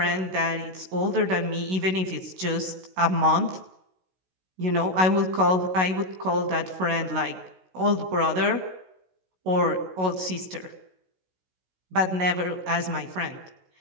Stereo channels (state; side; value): late; left; 16 ms